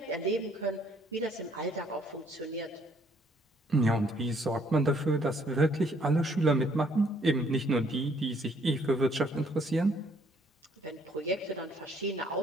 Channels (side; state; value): both; normal; correlation 0.65